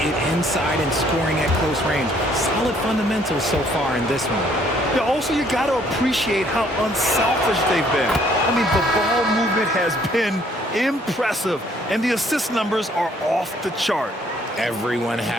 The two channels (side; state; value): both; normal; correlation 0.63